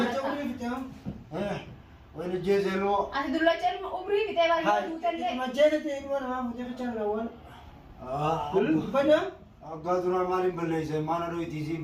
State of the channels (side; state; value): both; identical; correlation 1.00